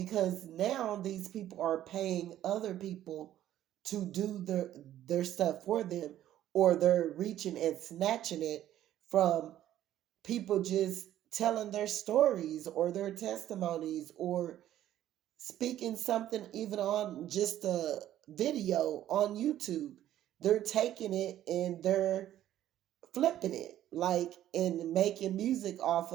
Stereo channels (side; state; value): left; quieter; 12.4 dB